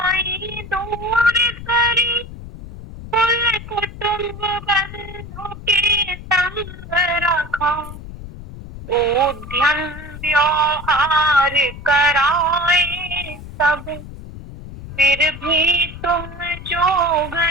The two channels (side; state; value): left; noise; rumble, 13 dB below the sound